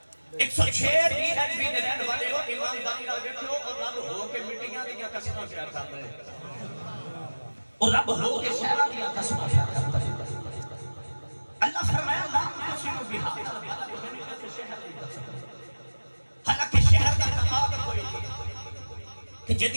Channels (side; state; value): both; inverted; correlation -1.00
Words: 106 भी रहने वाले हो ईमानदारी नाल बैठो और रब हो के मिट्टियां दी कसमां शेयर कर रहे और रब हो के शहरां दी कसमां शेयर कर रहे अल्लाह फरमाया ला तुसिमु बिहातल बलद मैंने इस शहर दी कसम हालांकि शहर का तकाब कोई नहीं कि